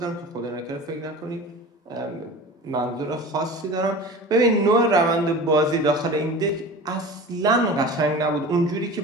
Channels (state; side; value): normal; both; correlation 0.36